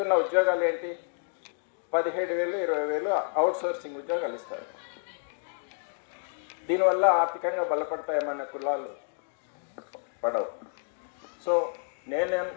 ఉద్యోగాలు ఏంటి? 17,000 20,000 అవుట్ సోర్సింగ్ ఉద్యోగాలు ఇస్తారు. దీనివల్ల ఆర్థికంగా బలపడతాయి మన కులాలు? పడవు. సో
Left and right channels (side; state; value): right; silent; digital silence